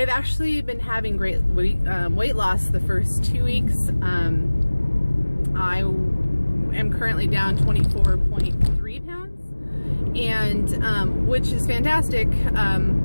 actually been having great weight loss the first 2 weeks. I am currently down 24.3 pounds, and which is fantastic.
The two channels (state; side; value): inverted; both; correlation -1.00